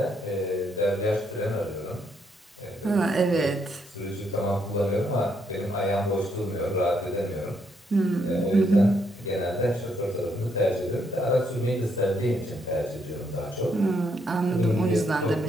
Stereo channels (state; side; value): normal; both; correlation 0.74